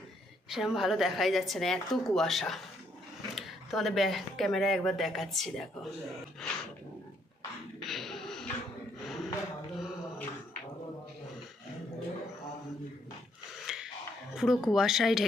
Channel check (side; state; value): both; normal; correlation 0.71